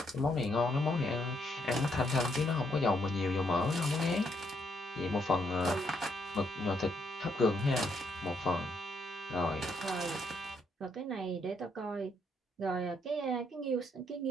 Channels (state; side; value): normal; both; correlation 0.74